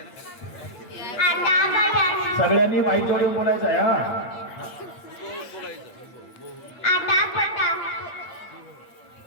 सगळ्यांनी माईक जोडून बोलायचं आहे हा.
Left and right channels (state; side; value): late; right; 8.8 ms